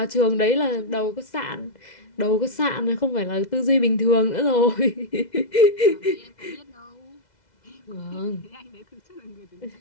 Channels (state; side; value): late; right; 2.0 ms